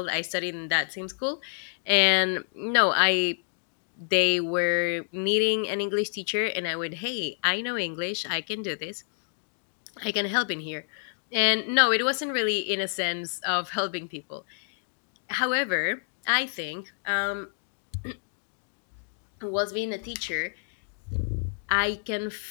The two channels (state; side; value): silent; right; digital silence